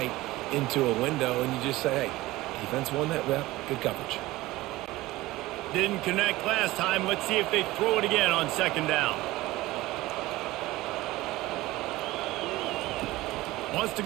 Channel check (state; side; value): quieter; left; 18.5 dB